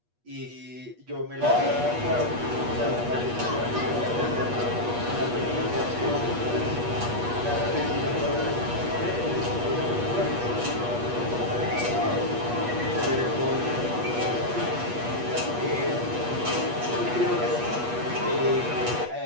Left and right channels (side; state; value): left; late; 8.3 ms